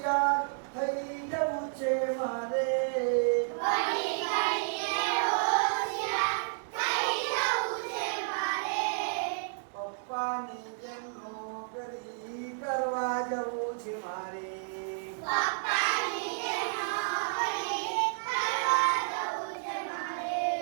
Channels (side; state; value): left; silent; digital silence